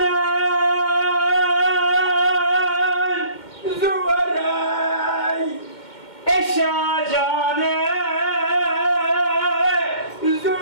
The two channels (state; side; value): late; right; 2.1 ms